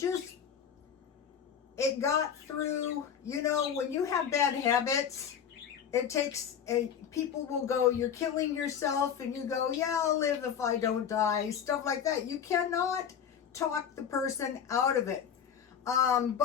got through, when you have bad habits, it takes people will go, you're killing yourself, and you go, yeah, I'll live if I don't die, stuff like that. You cannot talk the person out of it.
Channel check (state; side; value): quieter; right; 8.1 dB